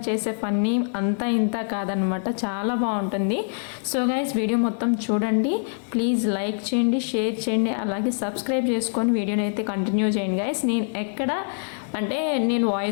చేసే ఫన్నీ అంతా ఇంత కాదనమాట, చాలా బాగుంటుంది. సో గైస్ వీడియో మొత్తం చూడండి, ప్లీజ్ లైక్ చేయండి, షేర్ చేయండి, అలాగే సబ్స్క్రైబ్ చేసుకొని వీడియోని అయితే కంటిన్యూ చేయండి గైస్. నేను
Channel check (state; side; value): silent; right; 62 dB below the other